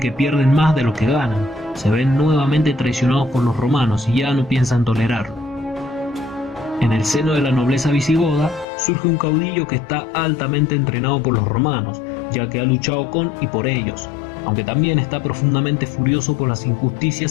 pierden más de lo que ganan. Se ven nuevamente traicionados por los romanos y ya no piensan tolerarlo. En el seno de la nobleza visigoda, surge un caudillo que está altamente entrenado por los romanos, ya que ha luchado con y por ellos, aunque también está profundamente furioso por las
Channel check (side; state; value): right; drops out; at 8.7 s